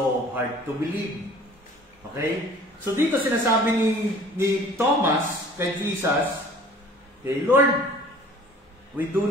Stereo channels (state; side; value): normal; both; correlation 0.49